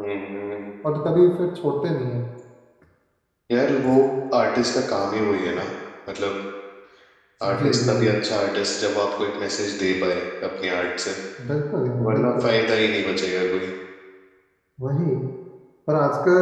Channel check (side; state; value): both; identical; correlation 1.00